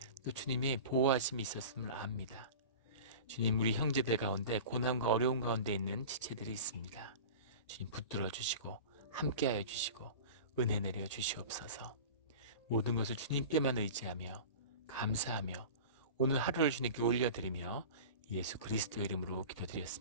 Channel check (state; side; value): inverted; both; correlation -0.34